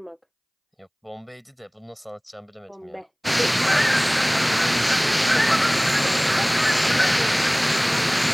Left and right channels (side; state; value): both; identical; correlation 1.00